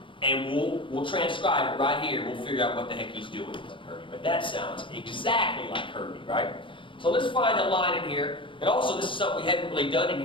And we'll transcribe it right here. We'll figure out what the heck he's doing with Herbie. But that sounds exactly like Herbie, right? So let's find a line in here. And also, this is something we haven't really done in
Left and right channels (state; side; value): late; right; 0.25 ms